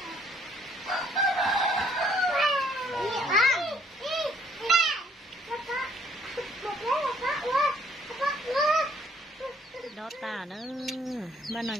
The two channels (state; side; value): normal; both; correlation 0.64